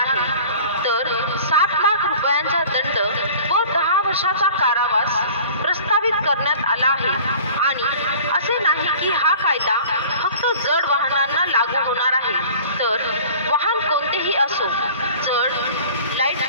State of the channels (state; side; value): inverted; both; correlation -0.44